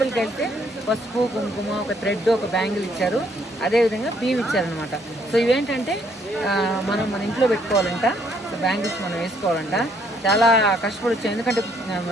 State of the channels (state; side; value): normal; both; correlation 0.67